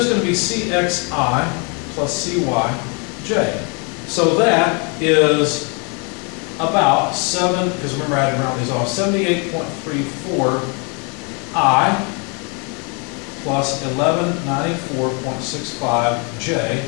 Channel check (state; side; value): quieter; right; 34.9 dB